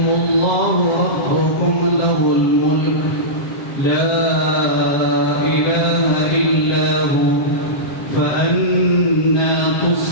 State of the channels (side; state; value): right; late; 7.4 ms